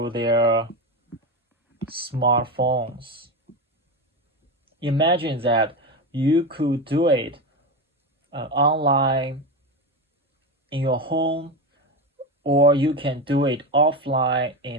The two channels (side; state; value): both; normal; correlation 0.18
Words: their smartphones. Imagine that you could do it online in your home, or you can do it offline